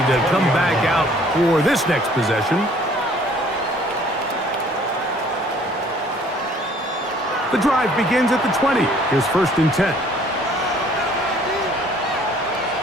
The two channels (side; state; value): both; normal; correlation 0.57